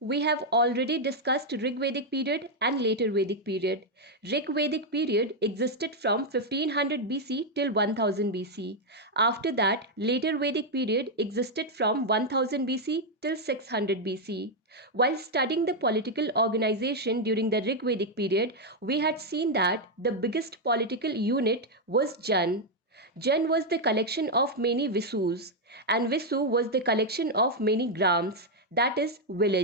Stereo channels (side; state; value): both; normal; correlation 0.01